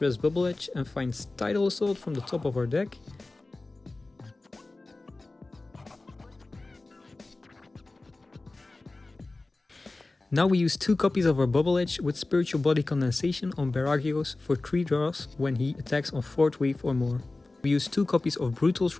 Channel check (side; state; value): right; quieter; 3.2 dB